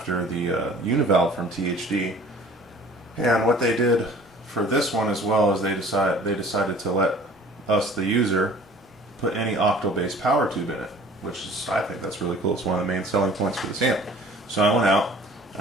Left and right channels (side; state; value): both; normal; correlation 0.48